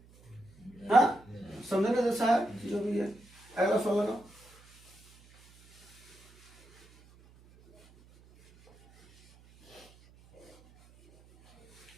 हाँ समझने जैसा है जो भी है। अगला सवाल लगाओ।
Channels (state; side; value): noise; right; hum, 27 dB below the sound